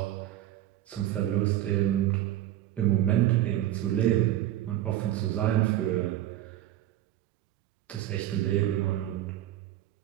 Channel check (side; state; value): left; quieter; 13.2 dB